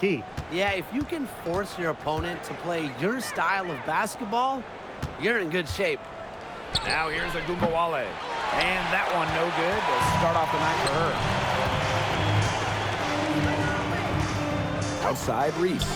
Yeah, if you can force your opponent to play your style of basketball, you're in good shape. Now here's a Gumbawale. And that one no good to start off the night for her. Outside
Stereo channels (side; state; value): both; identical; correlation 1.00